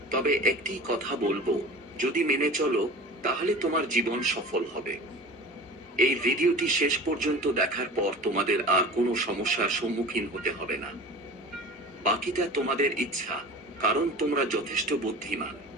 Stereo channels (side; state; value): both; normal; correlation 0.37